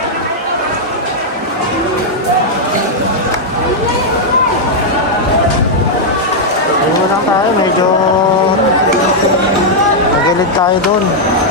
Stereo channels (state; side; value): normal; both; correlation -0.04